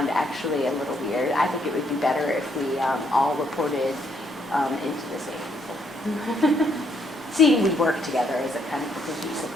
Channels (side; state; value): both; normal; correlation 0.72